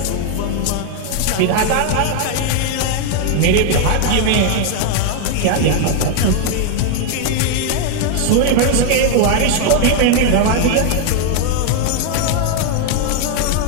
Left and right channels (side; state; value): both; different; correlation 0.00